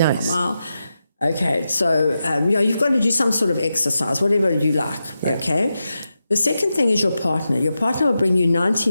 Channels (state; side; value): inverted; both; correlation -0.89